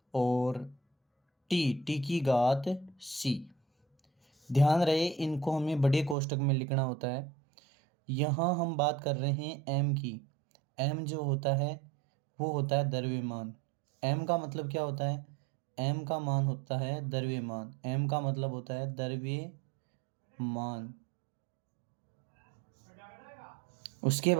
और टी की घात सी। ध्यान रहे, इनको हमें बड़े कोष्टक में लिखना होता है। यहाँ हम बात कर रहे हैं एम की। एम जो होता है वो होता है द्रव्यमान। एम का मतलब क्या होता है? एम का मान होता है द्रव्यमान। एम का मतलब होता है द्रव्यमान। उसके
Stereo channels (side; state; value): left; drops out; at 6.2 s